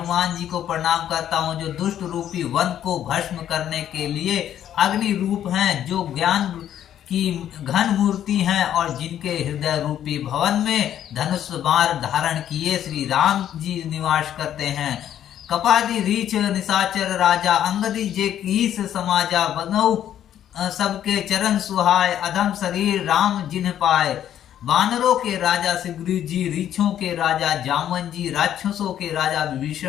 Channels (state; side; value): quieter; right; 10.7 dB